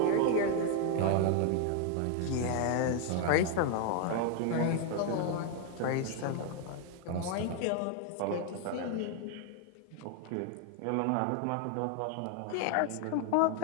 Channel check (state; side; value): different; both; correlation 0.01